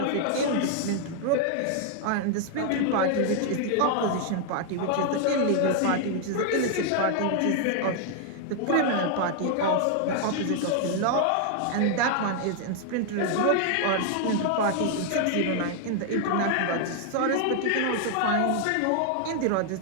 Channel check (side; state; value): both; different; correlation 0.00